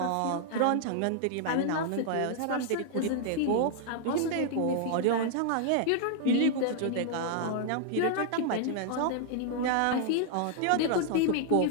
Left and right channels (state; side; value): different; both; correlation 0.00